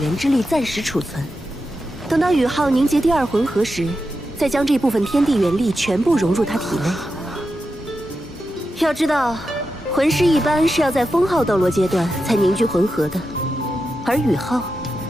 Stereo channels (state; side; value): normal; both; correlation 0.89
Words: 源之力暂时储存。等到宇浩凝结第2魂核时，再将这部分天地元力全部融入他体内。要知道，魂师一般是要在封号斗罗阶段才凝聚魂核的，而宇浩